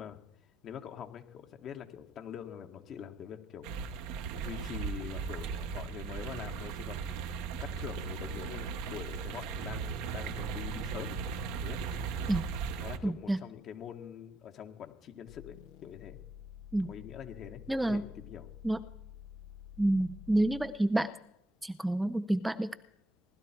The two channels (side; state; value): both; normal; correlation 0.75